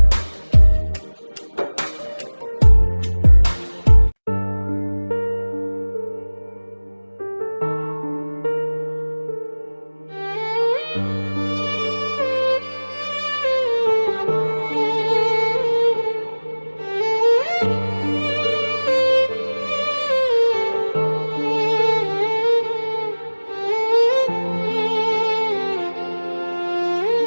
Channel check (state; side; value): inverted; both; correlation -1.00